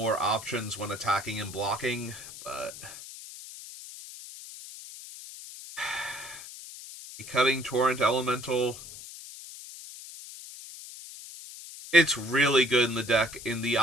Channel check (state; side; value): noise; left; hiss, 14 dB below the sound